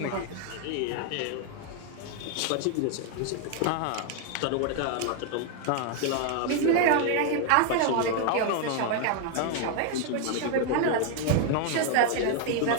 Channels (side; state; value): both; different; correlation 0.00